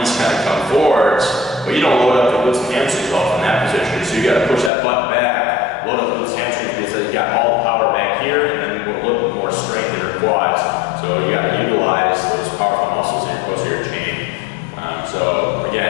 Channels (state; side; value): drops out; right; at 4.7 s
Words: kind of come forwards, but you don't load up the glutes and hamstrings off in that position. So you got to push that butt back, load up the glutes and hamstrings, because you got all the power back here, and then a little bit more strength in your quads. So you got to utilize those powerful muscles in your posterior chain. So